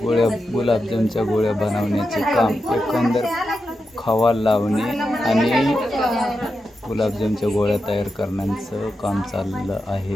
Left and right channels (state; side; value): normal; both; correlation 0.88